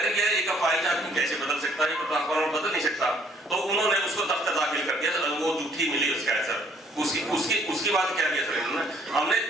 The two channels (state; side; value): normal; both; correlation 0.63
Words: यार एक अपाहिज आदमी कैसे बदल सकता है, ट्रांसफार्मर बदल नहीं सकता। तो उन्होंने उसको दफ्तर दाखिल कर दिया, वो झूठी मिली उसका है सर। उसकी बात क्या किया सर इन्होंने, हमने